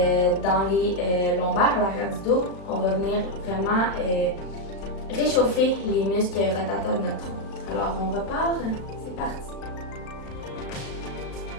dans les lombaires, à l'arrière du dos, on va venir vraiment réchauffer les muscles rotateurs de notre tronc. Alors, on repart. C'est parti.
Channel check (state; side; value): late; right; 36 ms